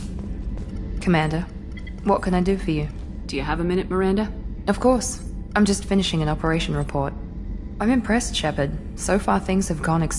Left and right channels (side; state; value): both; identical; correlation 1.00